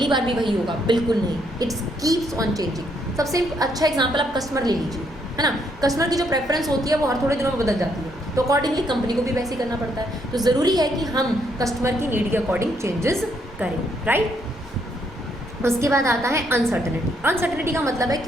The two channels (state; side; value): normal; both; correlation 0.73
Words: बार भी वही होगा, बिल्कुल नहीं, इट्स कीप्स ऑन चेंजिंग। सबसे अच्छा एग्जांपल आप कस्टमर ले लीजिए, है ना। कस्टमर की जो प्रेफरेंस होती है वो हर थोड़े दिनों में बदल जाती है, तो अकॉर्डिंगली कंपनी को भी वैसे ही करना पड़ता है। तो ज़रूरी है कि हम कस्टमर की नीड के अकॉर्डिंग चेंजेस करें, राइट। उसके बाद आता है अनसर्टेनिटी। अनसर्टेनिटी का मतलब है